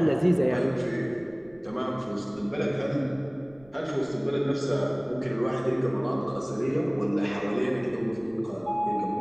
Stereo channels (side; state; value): right; noise; rumble, 27 dB below the sound